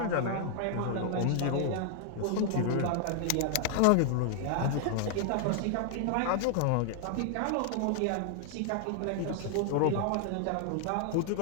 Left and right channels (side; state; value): both; different; correlation 0.00